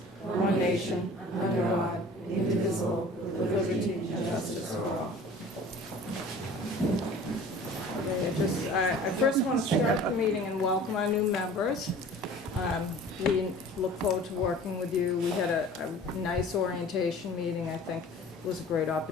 one nation, under God, indivisible, with liberty and justice for all. Okay, I first want to start the meeting and welcome our new members. We look forward to working with you. We had a nice orientation meeting. I think it was a great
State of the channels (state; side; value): normal; both; correlation 0.45